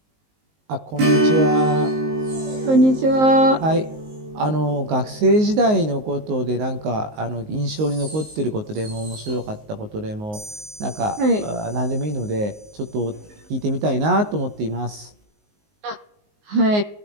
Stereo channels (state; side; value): late; left; 19 ms